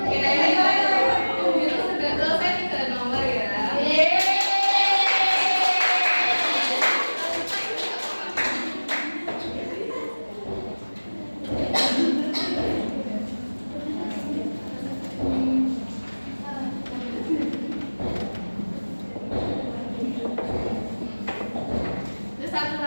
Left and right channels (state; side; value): inverted; both; correlation -1.00